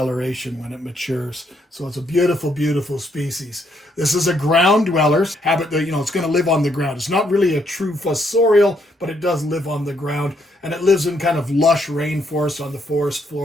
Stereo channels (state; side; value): normal; both; correlation 0.73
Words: when it matures. So it's a beautiful, beautiful species. This is a ground dweller. Habit that, it's going to live on the ground. It's not really a true fossorial, but it does live on the ground. And it lives in kind of lush rainforest on the forest